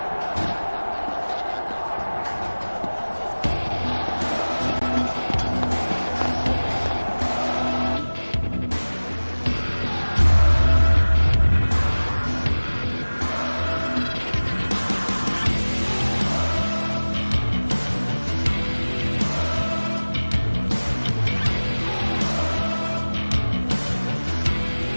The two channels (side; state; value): both; inverted; correlation -1.00